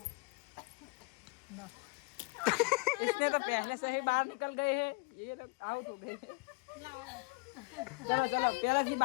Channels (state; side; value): quieter; right; 29.1 dB